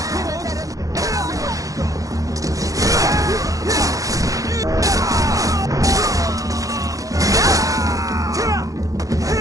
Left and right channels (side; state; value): left; late; 0.17 ms